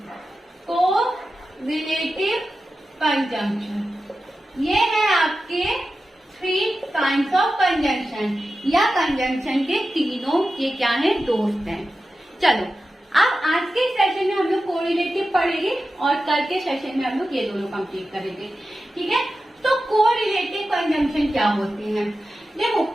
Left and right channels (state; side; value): normal; both; correlation 0.92